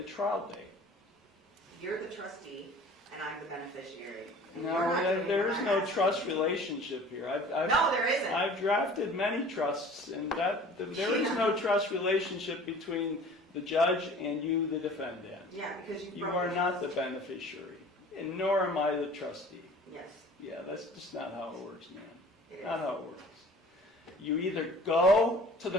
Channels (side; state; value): both; normal; correlation 0.46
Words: trial date. You're the trustee and I'm the beneficiary. No, there is no trust relationship here. No, there isn't. I've drafted many trusts, and there is no trust relationship between the judge and you, the defendant. Yeah, because You are not the beneficiary, and nor am I the trustee. Yes, Yeah, that's just not how it works, man. it is. Not how it works. You either go to